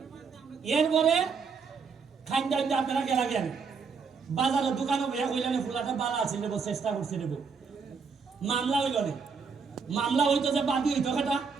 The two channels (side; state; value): left; quieter; 5.4 dB